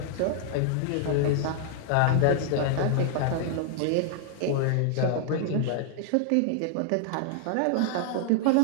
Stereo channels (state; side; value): different; both; correlation 0.00